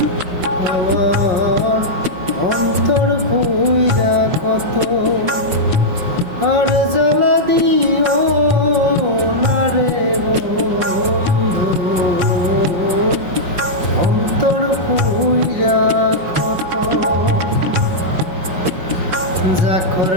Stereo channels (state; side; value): late; left; 5.5 ms